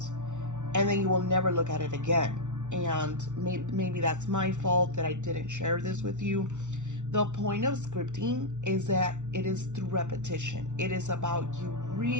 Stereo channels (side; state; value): left; late; 0.85 ms